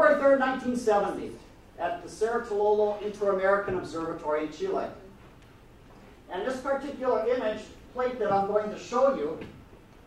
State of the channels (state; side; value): identical; both; correlation 1.00